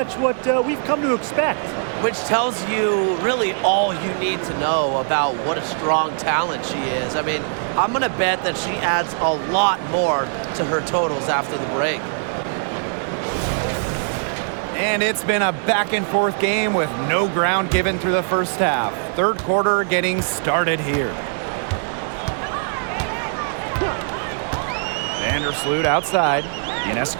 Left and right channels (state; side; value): silent; left; digital silence